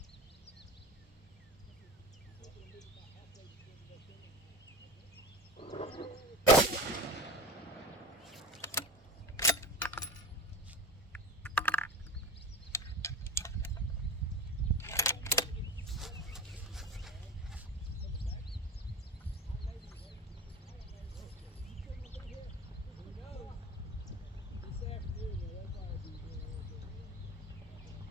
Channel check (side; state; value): both; normal; correlation 0.29